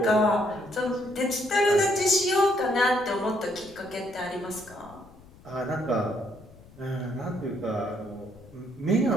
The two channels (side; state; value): left; noise; rumble, 23 dB below the sound